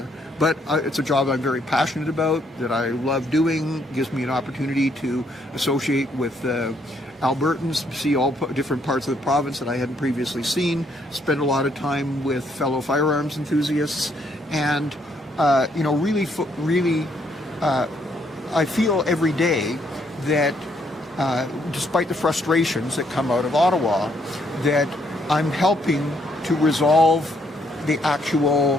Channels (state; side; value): normal; both; correlation 0.71